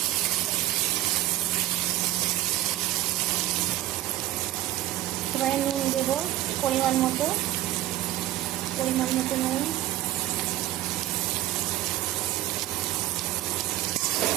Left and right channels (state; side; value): quieter; left; 15.1 dB